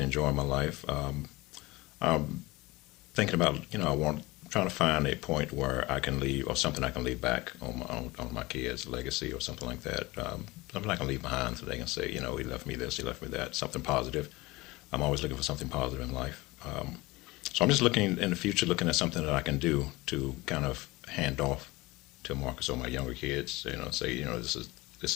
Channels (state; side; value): quieter; right; 21.4 dB